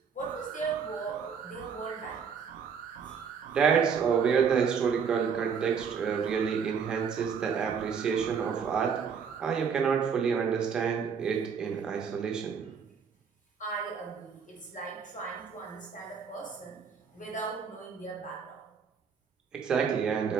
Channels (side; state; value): left; quieter; 6.5 dB